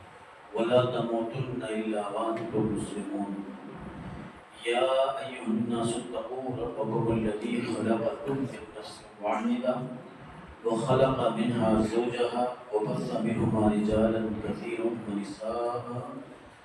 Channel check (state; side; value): identical; both; correlation 1.00